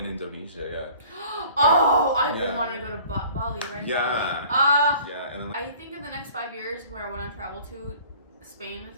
Indonesia, Oh, I've been Yeah. wanting to go to Bali, right? Yeah. Ah. yeah. And then, like, I think in the next 5 years, where I want to travel to, Spain is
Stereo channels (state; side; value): inverted; both; correlation -0.50